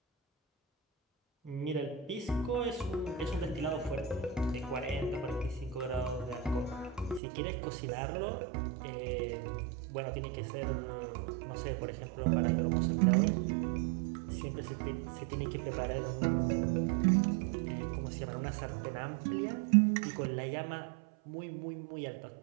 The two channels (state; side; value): drops out; left; at 7.2 s